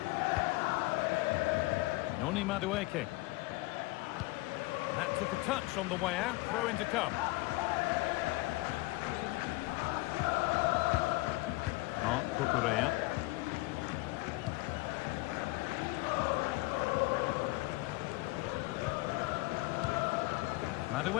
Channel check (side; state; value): right; quieter; 22.1 dB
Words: Noni Madueke. That took a touch on the way out. Throw in to come. Mark Cucurella.